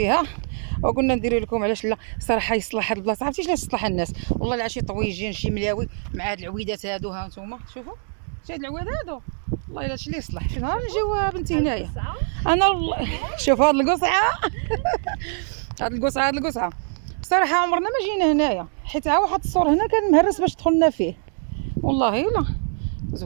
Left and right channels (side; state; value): left; silent; digital silence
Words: وقلنا نديروا لكم علاش لا صراحه يصلح هاد البلاصه. عرفتي علاش تصلح الناس؟ والله لا شي طويجين شي ملاوي مع هاد العويدات هادو. ها نتوما شوفوا شي هاد العواد هادو، والله الا هادشي اللي يصلح. شي نهار نجيو بنتي هنايا انا شوف هاد القصعه هاد القصعه بصراحه عمرنا ما جينا هنايا، حيت ها واحد السور هنا كان مهرس باش دخلنا فيه. والله الا